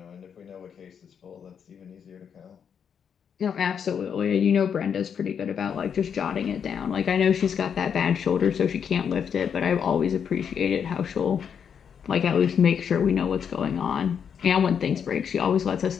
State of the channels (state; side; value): quieter; right; 7.5 dB